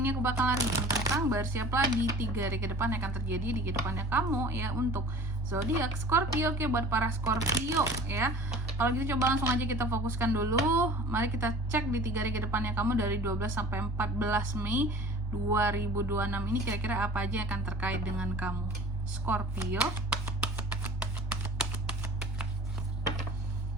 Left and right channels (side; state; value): both; normal; correlation 0.45